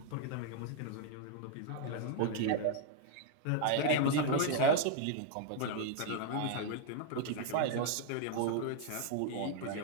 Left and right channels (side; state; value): both; different; correlation 0.00